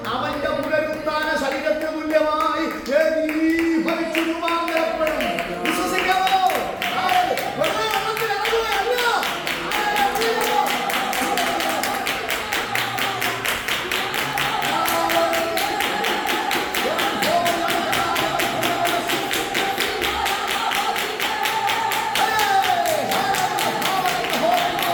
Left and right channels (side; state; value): both; identical; correlation 1.00